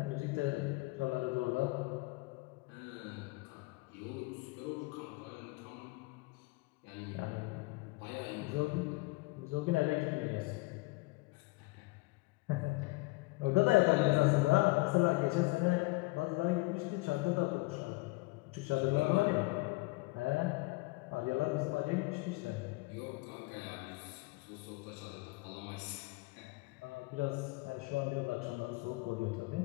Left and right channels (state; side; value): quieter; right; 23.9 dB